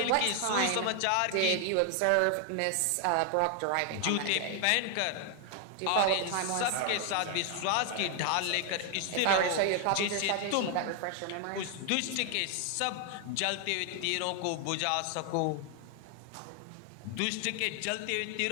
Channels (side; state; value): both; different; correlation 0.00